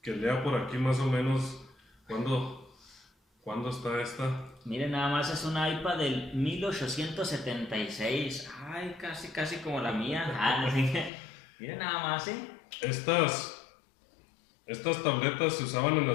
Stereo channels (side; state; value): right; drops out; at 11.1 s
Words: lea por aquí más o menos cuándo está esta. Miren, nada más es un iPad del 1876. Ay, casi como la mía. Miren nada más, Estas tabletas se usaban en